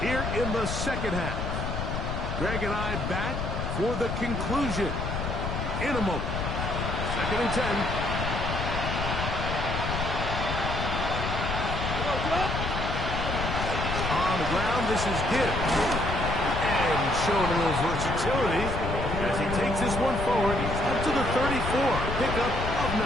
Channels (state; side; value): noise; left; rumble, 3 dB below the sound